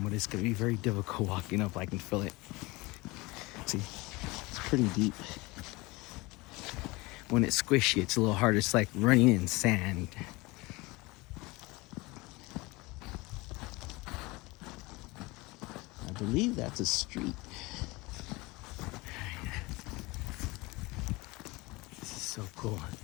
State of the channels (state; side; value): quieter; right; 23.2 dB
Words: it's gonna be very difficult walking up. I can feel it. See, it's pretty deep. When it's squishy, it's a little harder. It's like running in sand. I believe that's a street. This is so cool.